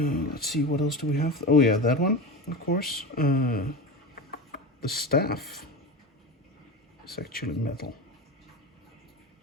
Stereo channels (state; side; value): normal; both; correlation 0.25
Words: Let's see, what else do we have? Oh yeah, that one, of course. The staff is actually metal.